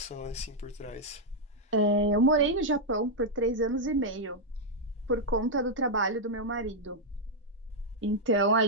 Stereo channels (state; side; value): normal; both; correlation -0.03